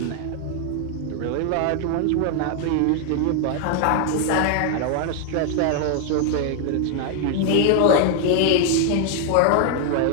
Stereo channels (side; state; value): both; different; correlation 0.00